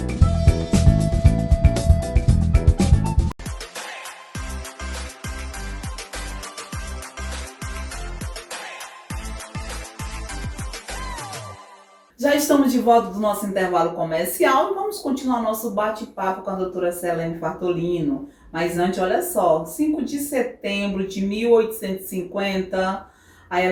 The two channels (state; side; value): identical; both; correlation 1.00